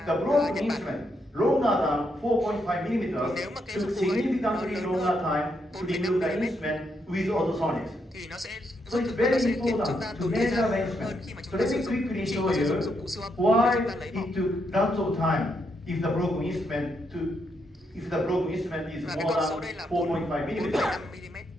the broken Nhật Bản. instrument longer than 4.5 millimeters Nếu mà cái took dụng cụ ấy significantly nó lớn longer hơn time to 4,5 remove the mm instrument with ultrasonics. thì nó sẽ So giúp it's chúng ta very sẽ khiến chúng important ta to tốn thời measure gian the hơn instrument. khi mà So chúng ta let sử me dụng quickly chỉ show có sử dụng you dụng cụ siêu âm why để chúng ta lấy bỏ. it took lots of time if the broken instrument to if the broken instrument is Và cái more con số than đây là 4.5 millimeters. 4,5 mm.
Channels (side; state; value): both; normal; correlation 0.79